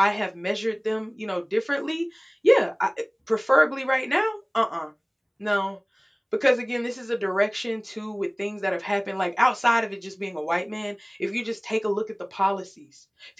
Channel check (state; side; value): identical; both; correlation 1.00